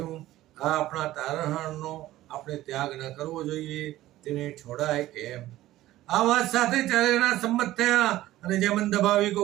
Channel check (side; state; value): left; quieter; 15.4 dB